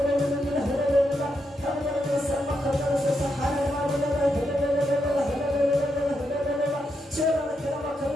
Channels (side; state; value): both; normal; correlation 0.82